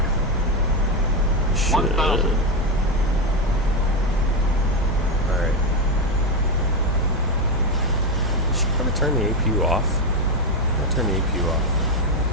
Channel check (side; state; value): both; normal; correlation 0.09